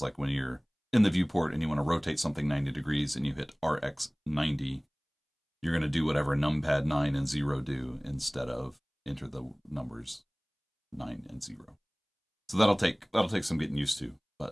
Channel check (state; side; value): identical; both; correlation 1.00